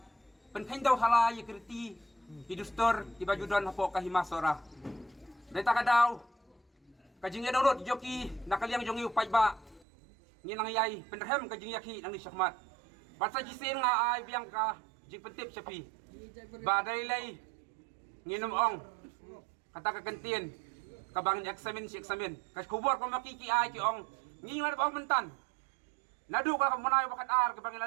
penhendaw hala yikriti hidustor tibajudon hapo kahima sora deta kadaw kajing edorot joki nakaliang jongi upay ba nginang yay penderhem ka jing yaki nang ni syakmat basa jisin nga ay biang ka jing pentip sapi badai lay nginom ong kata kagantian kabangin eksamen si eksamen kas kubur ko makiki ay ki ong ngingan ba mentan nadu ka munay bakat ar kabangin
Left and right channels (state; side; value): drops out; left; at 9.9 s